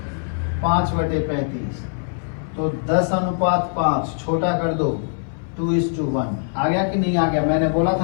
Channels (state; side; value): silent; right; 61 dB below the other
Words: 5/35। तो 10:5 छोटा कर दो, 2:1। आ गया कि नहीं आ गया? मैंने बोला